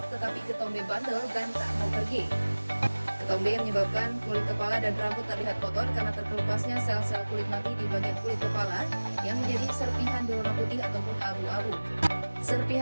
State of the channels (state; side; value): inverted; both; correlation -1.00